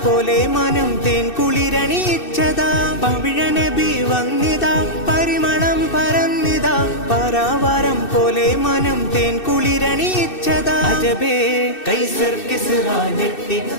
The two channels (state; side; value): late; right; 2.6 ms